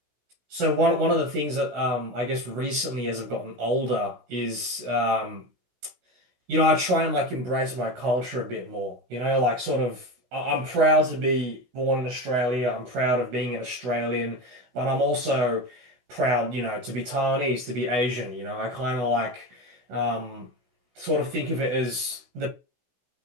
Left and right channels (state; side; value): late; left; 16 ms